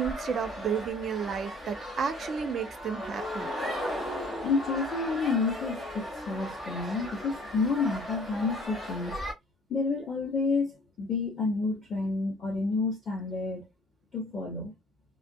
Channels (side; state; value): both; normal; correlation 0.53